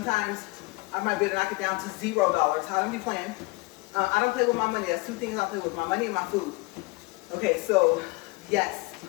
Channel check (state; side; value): quieter; right; 24.2 dB